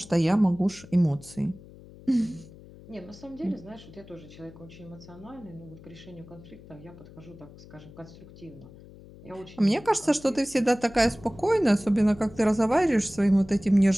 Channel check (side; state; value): left; noise; hum, 20 dB below the sound